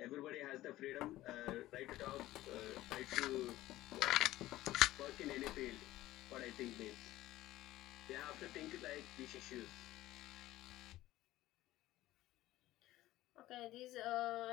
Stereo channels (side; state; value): right; quieter; 15.9 dB